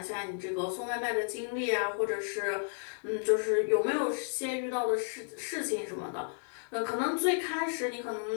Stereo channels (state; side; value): silent; right; digital silence